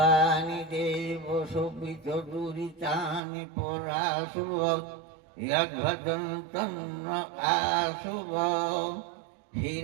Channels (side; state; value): left; drops out; at 3.2 s